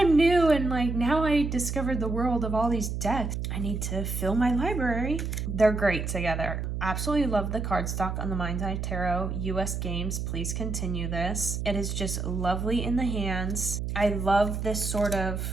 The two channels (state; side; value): noise; right; hum, 3 dB below the sound